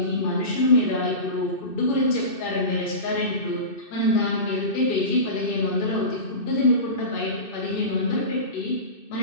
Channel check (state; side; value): late; right; 2.6 ms